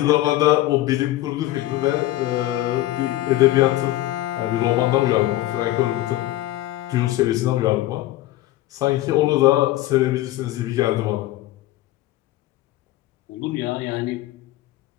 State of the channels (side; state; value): right; quieter; 16.0 dB